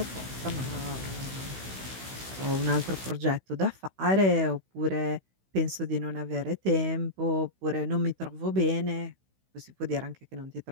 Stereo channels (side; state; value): left; late; 16 ms